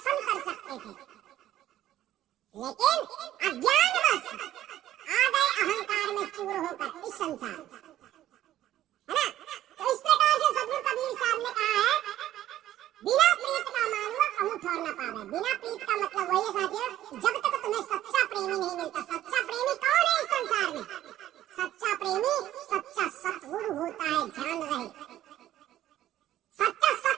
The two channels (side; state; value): left; quieter; 13.0 dB